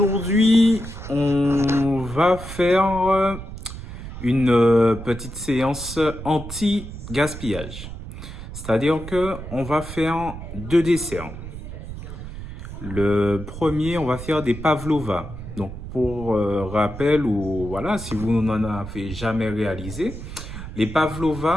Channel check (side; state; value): right; noise; rumble, 10 dB below the sound